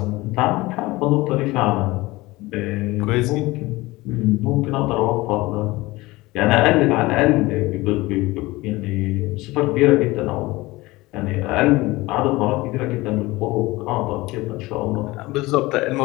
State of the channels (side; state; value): right; quieter; 20.5 dB